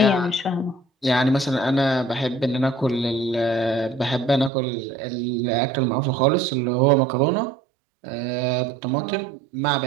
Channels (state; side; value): drops out; left; at 4.5 s